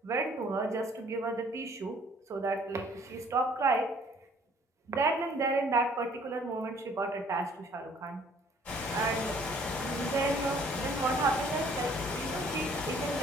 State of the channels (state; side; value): normal; both; correlation 0.58